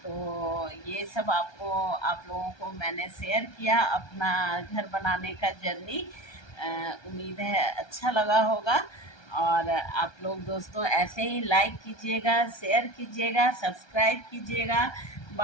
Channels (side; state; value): right; late; 1.3 ms